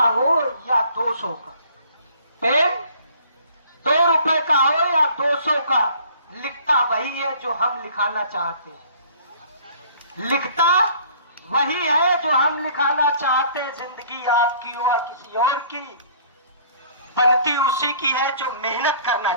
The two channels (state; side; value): inverted; both; correlation -0.54